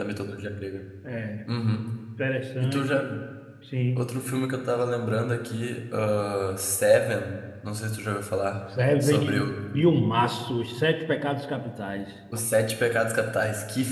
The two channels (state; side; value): identical; both; correlation 1.00